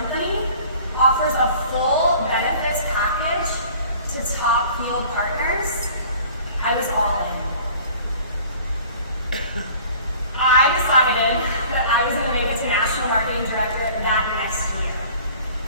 offers a full benefits package to top field partners, I was all in. I decided that I was going to make it to National Marketing Director that next year.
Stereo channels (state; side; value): inverted; both; correlation -0.48